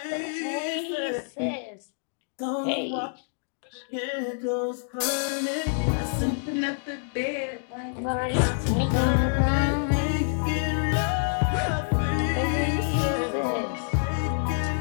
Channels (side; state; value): right; silent; digital silence